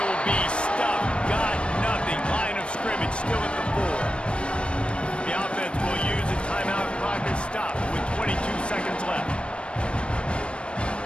be stuffed. Got nothing. Line of scrimmage still at the 4. The offense will use a timeout. Clock is stopped with 22 seconds left.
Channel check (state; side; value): late; right; 0.058 ms